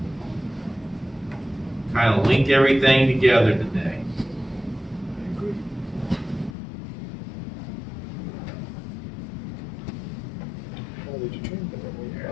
Kind of link everything together today.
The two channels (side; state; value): right; drops out; at 6.6 s